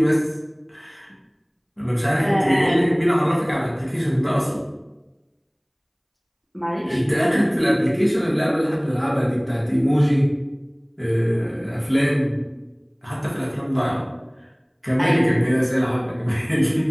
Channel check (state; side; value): identical; both; correlation 1.00